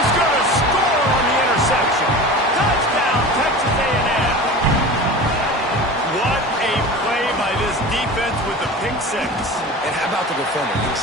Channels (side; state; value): both; normal; correlation 0.34